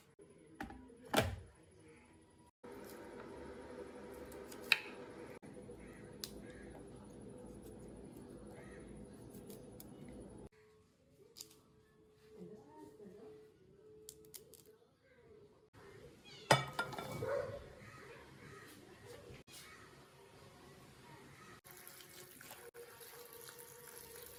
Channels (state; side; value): identical; both; correlation 1.00